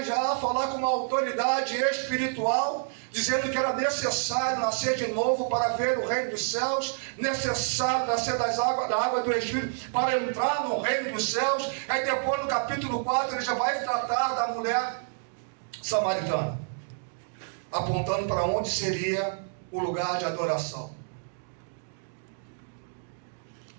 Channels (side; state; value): left; silent; digital silence